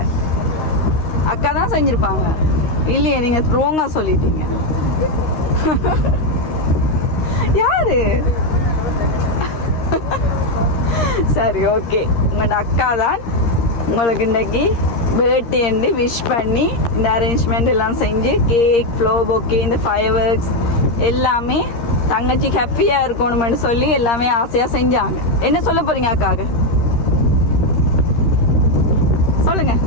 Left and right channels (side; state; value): right; late; 13 ms